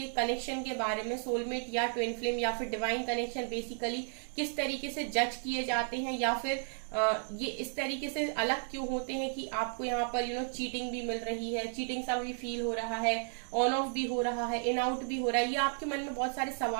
कनेक्शन के बारे में, सोलमेट या ट्विन फ्लेम या फिर डिवाइन कनेक्शन बेसिकली किस तरीके से जज किए जाते हैं, या फिर ये इस तरीके से अलग क्यों होते हैं कि आपको यहाँ पर चीटिंग भी मिल रही है, चीटिंग सा भी फील हो रहा है, ऑन ऑफ भी हो रहा है, इन आउट भी हो रहा है, ये आपके मन में बहुत सारे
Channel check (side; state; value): left; silent; 55 dB below the other